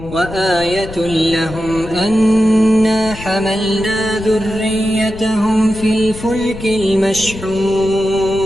وآية لهم أنا حملنا ذريتهم في الفلك المشحون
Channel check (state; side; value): noise; left; rumble, 13 dB below the sound